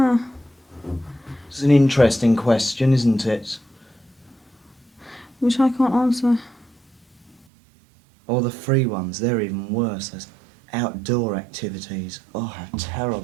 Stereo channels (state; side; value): drops out; left; at 7.5 s